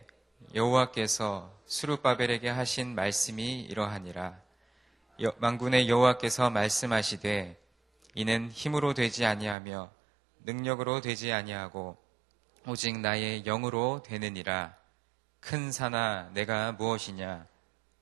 여호와께서 스룹바벨에게 하신 말씀이 이러하니라. 만군의 여호와께서 말씀하시되 이는 힘으로 되지 아니하며 능력으로 되지 아니하고 오직 나의 영으로 되느니라. 큰 산아 내가 무엇이냐?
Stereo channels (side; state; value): left; drops out; at 9.6 s